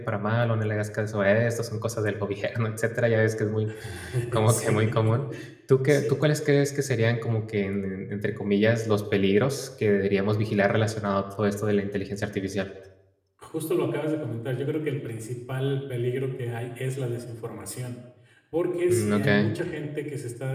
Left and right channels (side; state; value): both; identical; correlation 1.00